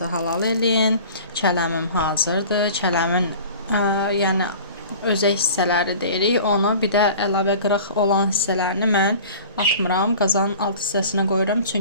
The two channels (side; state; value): both; inverted; correlation -0.42